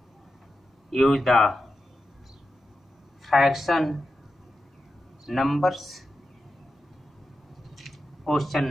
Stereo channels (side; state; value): both; normal; correlation 0.90